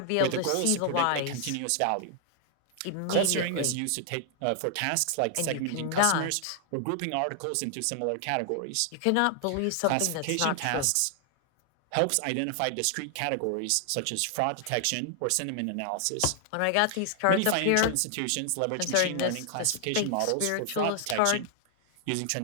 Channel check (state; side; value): different; both; correlation 0.00